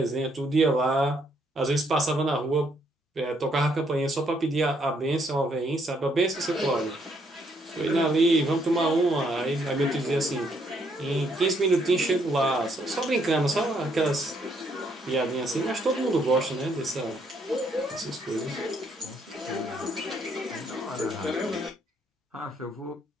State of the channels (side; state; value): both; normal; correlation 0.71